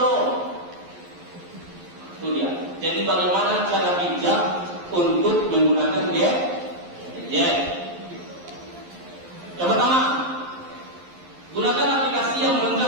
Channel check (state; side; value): late; left; 11 ms